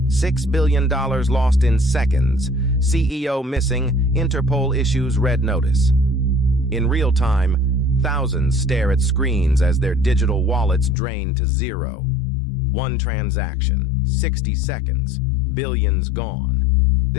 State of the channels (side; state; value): right; drops out; at 11.0 s